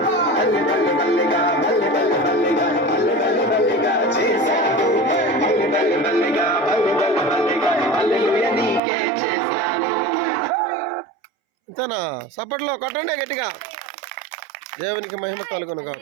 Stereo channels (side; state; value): left; drops out; at 8.8 s